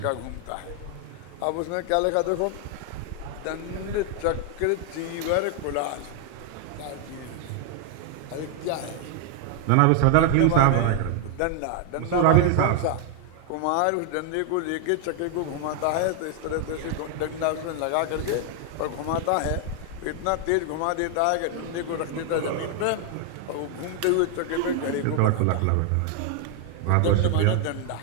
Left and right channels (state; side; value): different; both; correlation 0.00